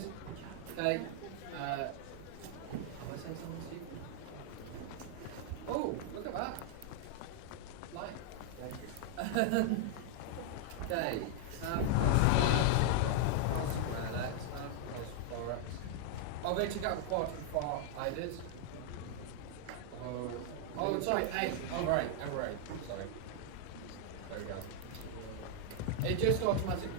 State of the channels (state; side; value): different; both; correlation 0.00